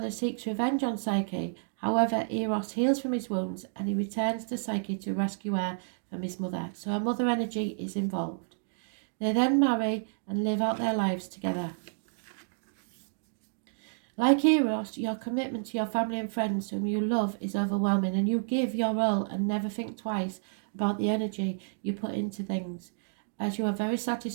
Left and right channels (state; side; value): silent; left; digital silence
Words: seeks revenge on Psyche. However, Eros heals from his wounds, and he returns to Psyche to rescue her from his mother. So her mother energy is involved. They then marry and live out their lives together. Like Eros, your commitment to your family and friends whom you love is overwhelming, and you give your all and never think twice about the energy you put into things, as you are very